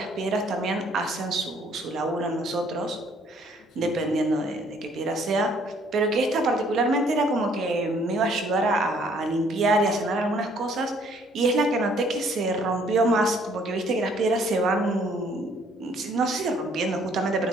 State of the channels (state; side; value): normal; both; correlation 0.62